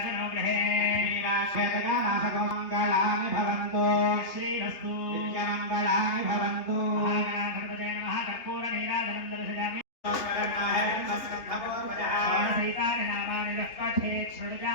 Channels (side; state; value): right; late; 3.1 ms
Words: గృహే మంగళాని భవంతు. శ్రీరస్తు మంగళాని భవంతు. మహాగణాధిపతయే నమః. కర్పూర నీరాజనం దర్శయామి. షోడశైతాని నామాని యః పఠేత్